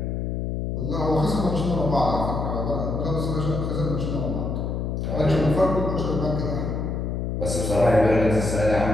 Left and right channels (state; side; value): noise; left; hum, 2 dB below the sound